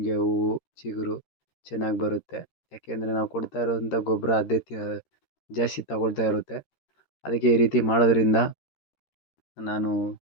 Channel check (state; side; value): late; right; 13 ms